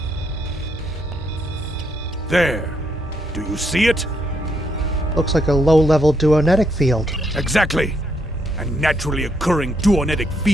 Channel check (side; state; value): both; normal; correlation 0.75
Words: There. Do you see it? Looks like a low-level duonetic field. Exactly. And naturally occurring duonetic